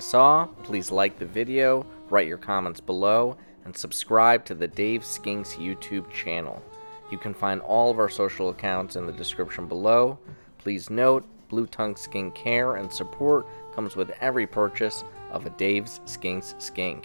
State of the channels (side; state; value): both; inverted; correlation -1.00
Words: please like the video, write your comments below, and subscribe to the Dave Skinks YouTube channel. You can find all of our social accounts in the description below. Please note, blue-tongued care and support comes with every purchase of a Dave's Skinks